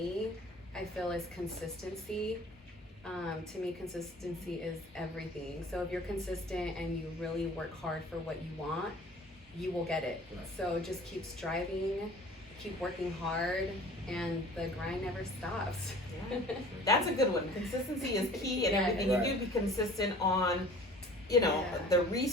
I feel, is consistency. To me, consistency is everything. So if you're consistent and you really work hard for what you want, you will get it. Right. So just keep striving, keep working hard, and the grind never stops. Yeah. That's a good one. Consistency is key in Yeah. everything. Right. You do be consistent on, you know, Yeah. the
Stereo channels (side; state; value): both; normal; correlation 0.47